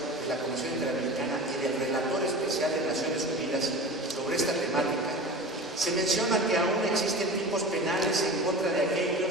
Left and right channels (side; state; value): both; normal; correlation 0.34